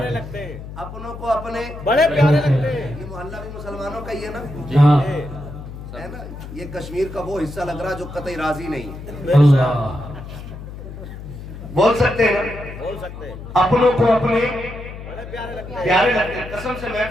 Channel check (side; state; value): left; noise; hum, 12 dB below the sound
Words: لگتے ہیں، اپنوں کو اپنے بڑے پیارے لگتے ہیں۔ یہ محلہ بھی مسلمانوں کا ہی ہے نا، ہاں ہے نا؟ یہ کشمیر کا وہ حصہ لگ رہا جو قطعی راضی نہیں ہے۔ اللہ، بول سکتے ہیں نا، بول سکتے ہیں، اپنوں کو اپنے بڑے پیارے لگتے ہیں۔ پیارے لگتے ہیں۔ قسم سے